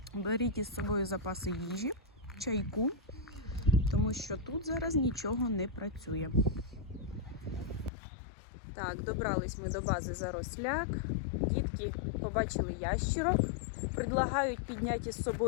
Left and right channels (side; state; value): right; drops out; at 7.9 s